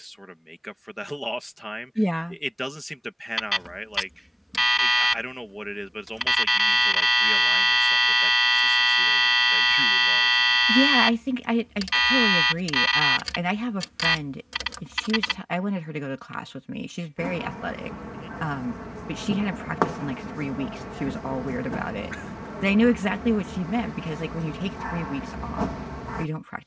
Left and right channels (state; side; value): identical; both; correlation 1.00